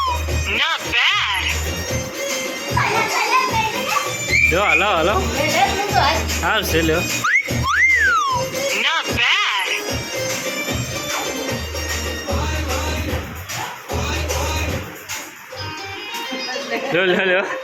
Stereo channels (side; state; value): both; identical; correlation 1.00